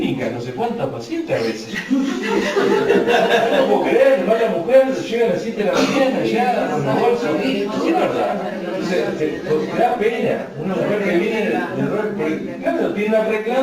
No sé cuántas pacientes a veces. No puedo creer, va la mujer, llega a las 7 de la mañana ya con la bolsa. Es verdad. Entonces, te da pena. Una mujer que viene claro, tiene una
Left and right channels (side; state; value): both; identical; correlation 1.00